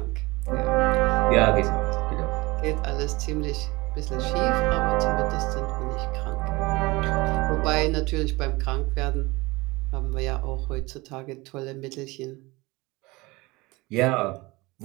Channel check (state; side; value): quieter; left; 22.8 dB